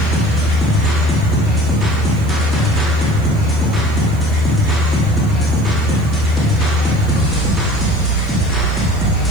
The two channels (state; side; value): noise; right; hiss, 25 dB below the sound